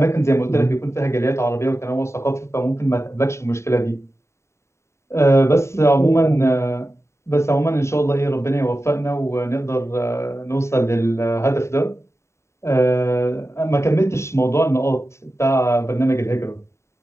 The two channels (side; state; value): right; late; 0.14 ms